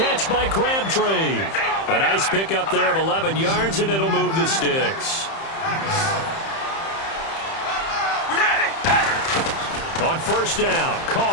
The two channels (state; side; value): late; right; 30 ms